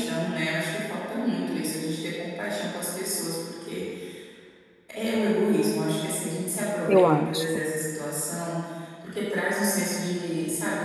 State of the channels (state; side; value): identical; both; correlation 1.00